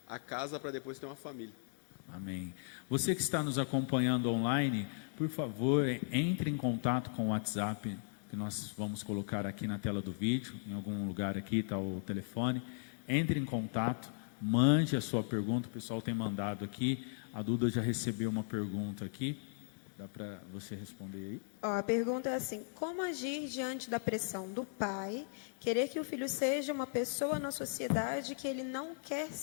a casa para depois ter uma família. Amém. Você que está nos acompanhando online, por favor, entre em contato com o WhatsApp, que nós vamos colocar aqui na tela do vídeo, em algum lugar aqui está o telefone. Entre em contato, mande a sua pergunta, o pessoal tem mandado aqui. A Duda já recebeu uma pergunta aqui. Dá para você responder aí? A pergunta é assim: como agir diante da pressão do pai, querer que o filho seja uma pessoa na sociedade que ele não quer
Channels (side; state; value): right; silent; digital silence